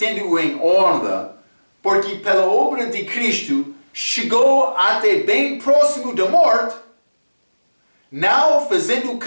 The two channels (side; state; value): both; inverted; correlation -1.00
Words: em honra, porque pela obra de Cristo chegou até bem próximo da morte, não fazendo